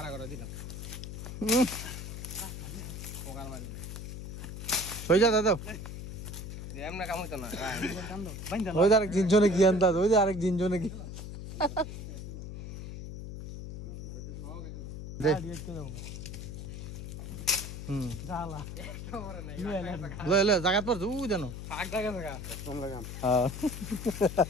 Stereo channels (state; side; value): noise; left; hum, 8 dB below the sound